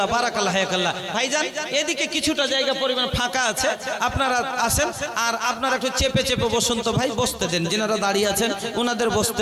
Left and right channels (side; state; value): both; identical; correlation 1.00